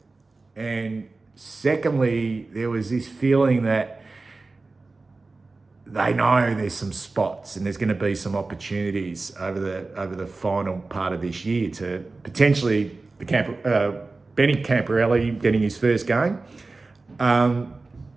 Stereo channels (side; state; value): left; quieter; 3.6 dB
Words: and secondly, there was this feeling that they know there's some spots and there's going to be some opportunities over the final part of this year to potentially Benny Camporelli getting his first game.